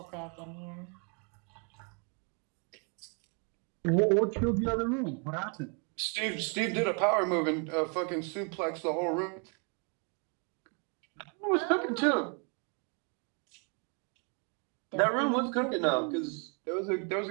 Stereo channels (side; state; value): left; quieter; 37.3 dB